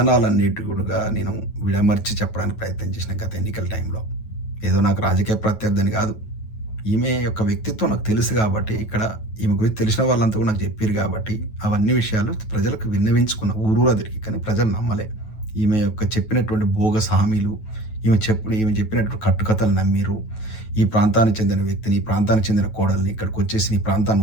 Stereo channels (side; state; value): right; late; 9.2 ms